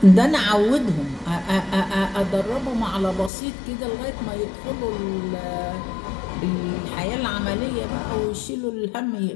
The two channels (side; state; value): right; drops out; at 3.3 s